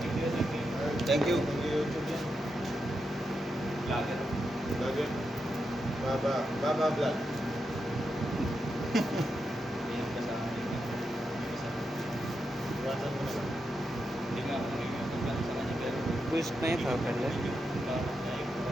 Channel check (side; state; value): both; normal; correlation 0.86